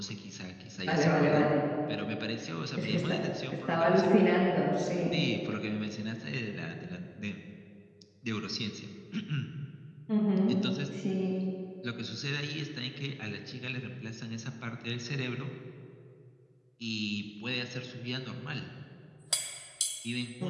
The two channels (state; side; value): identical; both; correlation 1.00